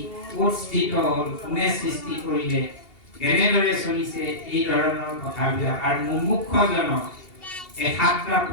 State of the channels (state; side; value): late; right; 2.8 ms